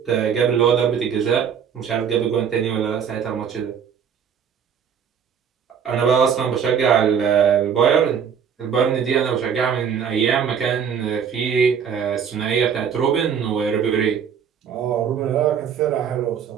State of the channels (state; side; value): quieter; left; 7.5 dB